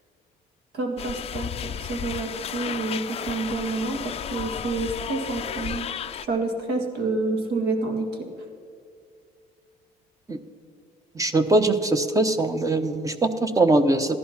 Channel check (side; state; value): both; normal; correlation 0.59